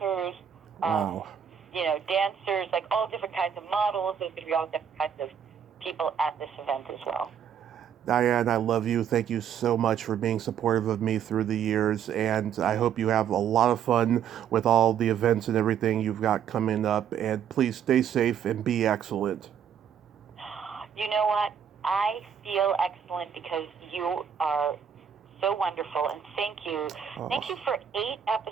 dancers, like all different kinds of models. There's going to be all different kinds of people at this event as well. Diane, I love you. Thank you so much for being supportive of me through the years, and I hope you have a lot of fun with all the events and everything you've got coming up, and please stay safe and be excellent. You know what? I feel excellent because you are so wonderful, and thank you. Thank you for 8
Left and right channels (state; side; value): quieter; left; 8.4 dB